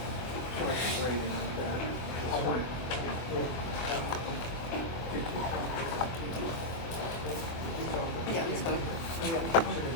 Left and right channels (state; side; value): late; right; 24 ms